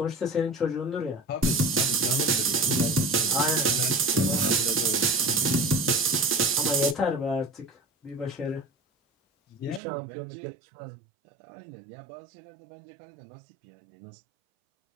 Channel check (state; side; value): drops out; left; at 9.8 s